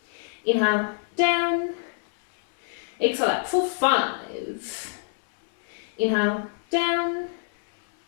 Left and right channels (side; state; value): right; silent; digital silence